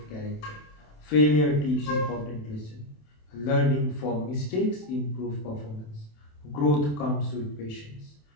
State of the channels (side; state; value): right; late; 27 ms